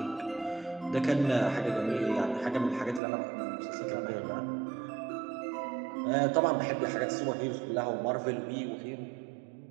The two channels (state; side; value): drops out; left; at 3.0 s